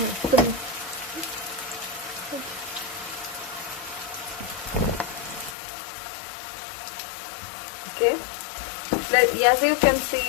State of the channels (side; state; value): right; drops out; at 5.6 s